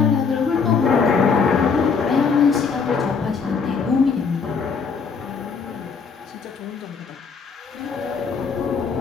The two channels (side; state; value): right; quieter; 5.5 dB